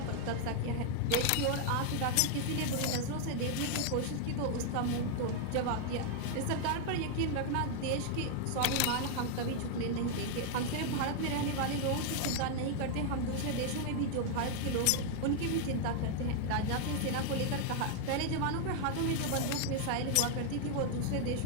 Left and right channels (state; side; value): different; both; correlation 0.00